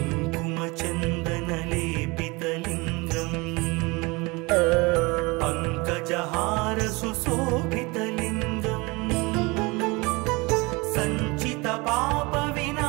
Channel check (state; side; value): quieter; left; 25.6 dB